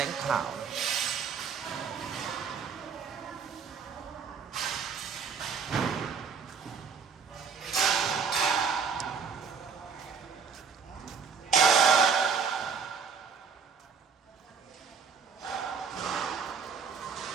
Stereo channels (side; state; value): left; quieter; 5.9 dB